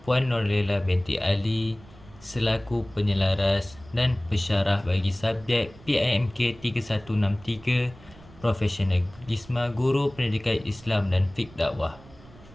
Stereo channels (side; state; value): right; noise; rumble, 22 dB below the sound